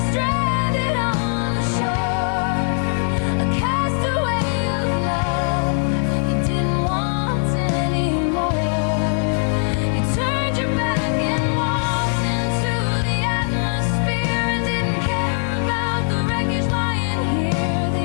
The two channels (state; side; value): silent; right; 57 dB below the other